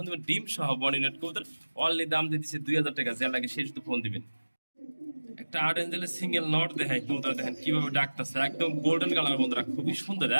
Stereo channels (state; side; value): inverted; both; correlation -1.00